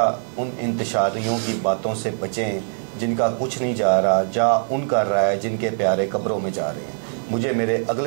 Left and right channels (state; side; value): silent; left; digital silence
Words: उन इंतशारियों की बातों से बचें जिनका कुछ नहीं जा रहा, जा उन कर रहा है जिनके प्यारे कब्रों में जा रहे हैं। मुझे मेरे